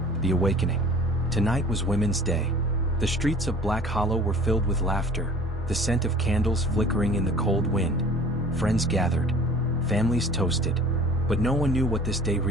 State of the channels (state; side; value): normal; both; correlation 0.46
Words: the awakening. Tonight was Women's Day. The streets of Black Hollow were filled with laughter, the scent of candles flickering in the cold wind. Friends gathered, families toasted, but no one knew what this day